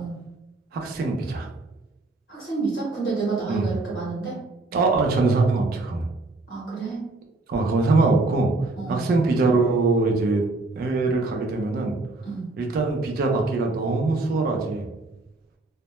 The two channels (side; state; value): left; quieter; 3.1 dB